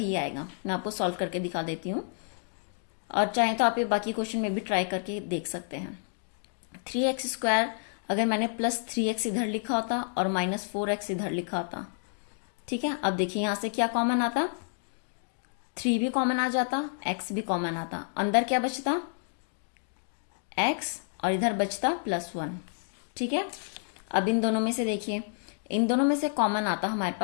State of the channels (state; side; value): silent; right; digital silence